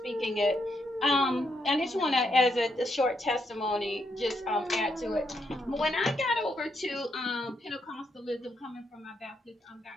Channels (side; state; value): both; normal; correlation 0.78